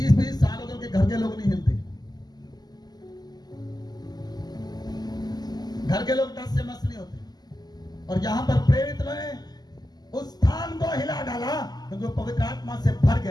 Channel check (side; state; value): right; late; 0.20 ms